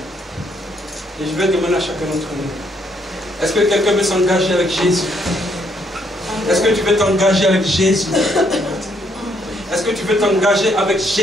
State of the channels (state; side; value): normal; both; correlation 0.71